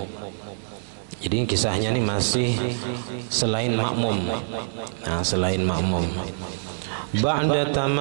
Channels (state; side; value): silent; left; digital silence